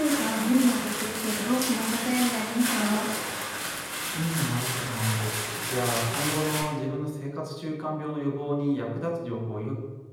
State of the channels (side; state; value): both; identical; correlation 1.00